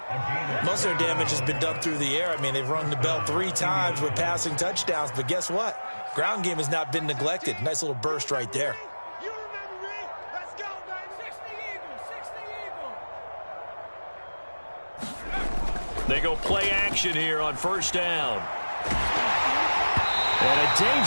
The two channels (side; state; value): both; inverted; correlation -1.00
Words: Most of their damage has been done through the air. I mean, they've rung the bell 3 times with passing touchdowns, but guess what? Ground game has not been neglected. Nice little burst right there. They go play action here on first down. And a